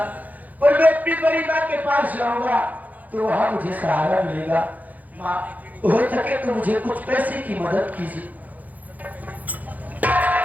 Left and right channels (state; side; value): late; left; 0.080 ms